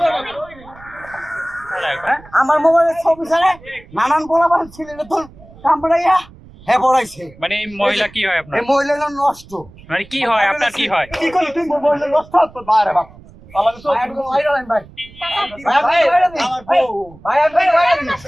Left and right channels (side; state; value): right; noise; rumble, 22 dB below the sound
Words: আমার মোবাইলের ছবি ছাড়া নানান পোলাপান ছিলেন তোর কামড়াইয়া হ্যাঁ পড়াইছে। মানে এই মহিলা কি হয় আপনার? এই মহিলা নষ্ট। মানে কি হয় আপনার? কি হয়? কি করলি তুই মহিলা নষ্ট তো বাইরে বাপ